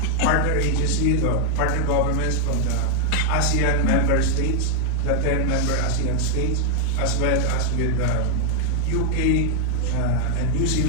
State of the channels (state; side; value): different; both; correlation 0.00